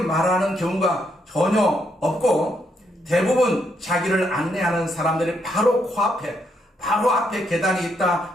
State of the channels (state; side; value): normal; both; correlation 0.76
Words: 경우가 전혀 없고 대부분 자기를 안내하는 사람들이 바로 코앞에 바로 앞에 계단이